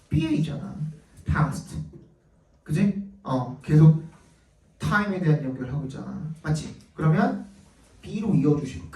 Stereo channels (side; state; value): both; identical; correlation 1.00